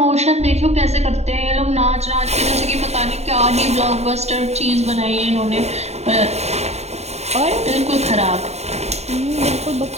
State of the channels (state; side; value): late; left; 0.31 ms